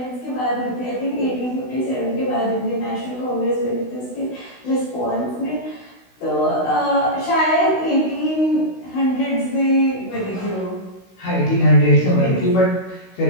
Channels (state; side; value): late; right; 16 ms